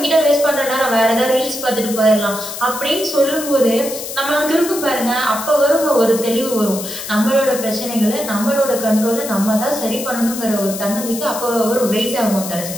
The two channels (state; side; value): noise; left; hiss, 8 dB below the sound